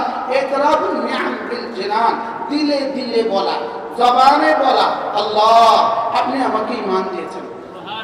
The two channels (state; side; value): identical; both; correlation 1.00